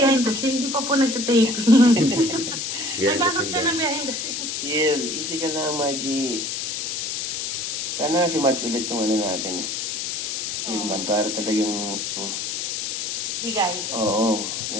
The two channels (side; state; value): left; noise; hiss, 3 dB below the sound